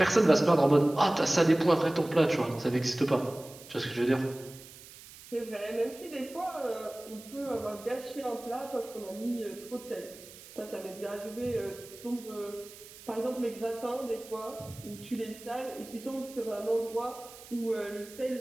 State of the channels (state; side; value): noise; right; hiss, 18 dB below the sound